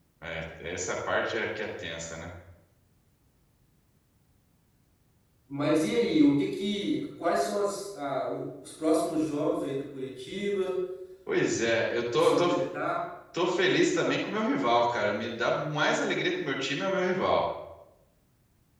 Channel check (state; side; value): identical; both; correlation 1.00